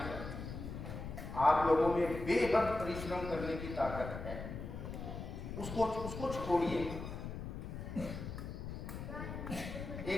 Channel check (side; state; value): left; noise; rumble, 7 dB below the sound